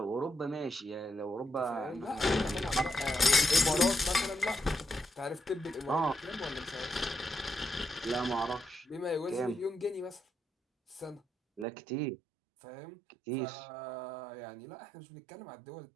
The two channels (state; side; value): drops out; left; at 11.7 s